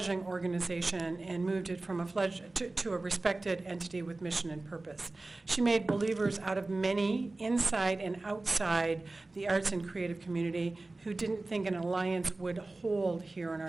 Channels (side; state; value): left; quieter; 3.1 dB